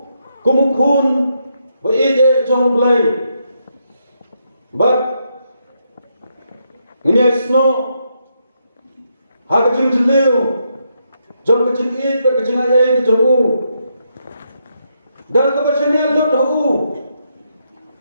kumukun, baik jong belai, bat ini esno, hak kecing jeliu, jom kecing it, kecing ayai kejamu, dan kebersihannya lut tahu,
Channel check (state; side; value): inverted; both; correlation -0.79